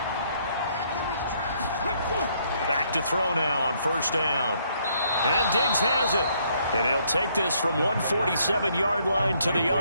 Back to throw now on first down. And Diggs has it. And he'll take this from 147-yard line to the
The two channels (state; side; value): inverted; both; correlation -0.69